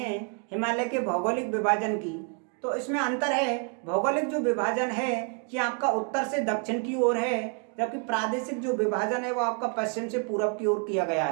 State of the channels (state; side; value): quieter; left; 37.5 dB